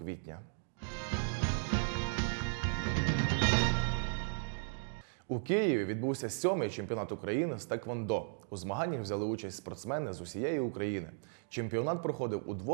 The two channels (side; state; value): left; silent; digital silence